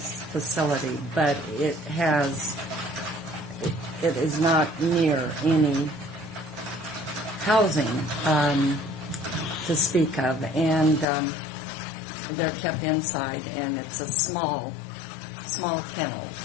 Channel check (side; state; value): right; drops out; at 11.1 s